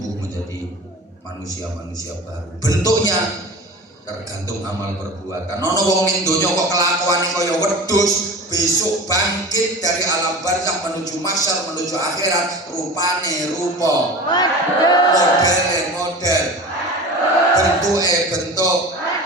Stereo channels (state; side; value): normal; both; correlation 0.34